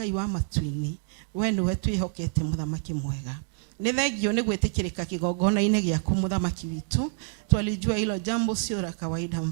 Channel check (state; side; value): silent; left; digital silence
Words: wa matu-inĩ. We nĩwe twĩhokete mũthamaki mwega. Nĩ thengio nĩ gwĩtĩkĩrĩka kĩgongona-inĩ gĩaku mũthamaki witũ. Twalijua hilo jambo sio la kawaida